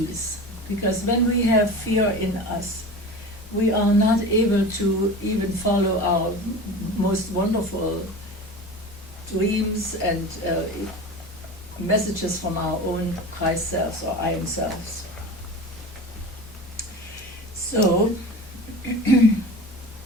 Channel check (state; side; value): normal; both; correlation 0.33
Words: because when we have fear in us, we are not able to even follow our most wonderful dreams and messages from our own Christ selves or I am selves. So,